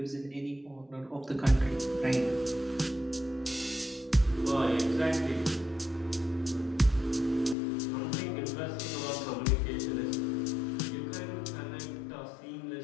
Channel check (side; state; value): right; drops out; at 7.6 s